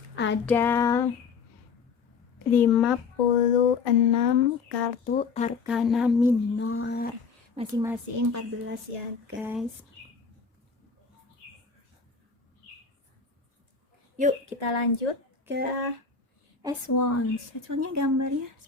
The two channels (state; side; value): quieter; right; 5.3 dB